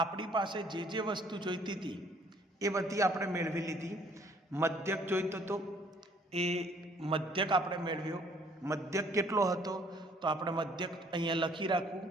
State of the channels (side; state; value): both; normal; correlation 0.60